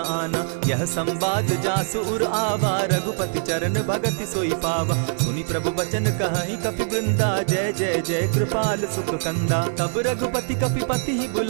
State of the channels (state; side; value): silent; left; 63 dB below the other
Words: आना। यह संवाद जासु उर आवा, रघुपति चरण भगति सोई पावा। सुनि प्रभु बचन कहि कपि वृंदा, जय जय जय कृपाल सुख कंदा। तब रघुपति कपिपति ही